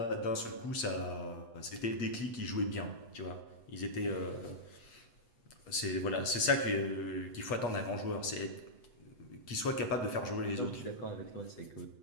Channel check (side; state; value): right; late; 8.5 ms